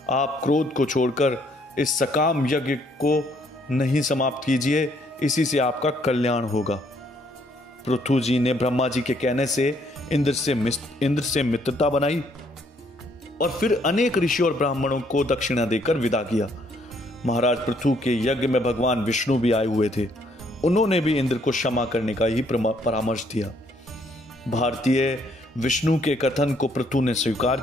आप क्रोध को छोड़कर इस सकाम यज्ञ को नहीं समाप्त कीजिए, इसी से आपका कल्याण होगा। पृथु जी ने ब्रह्मा जी के कहने से इंद्र से मित्रता बनाई और फिर अनेक ऋषियों और ब्राह्मणों को दक्षिणा देकर विदा किया। महाराज पृथु के यज्ञ में भगवान विष्णु भी आए हुए थे। उन्होंने भी इंद्र को क्षमा करने का ही परामर्श दिया। भारतीय विष्णु के कथन को पृथु ने स्वीकार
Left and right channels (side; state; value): both; normal; correlation 0.68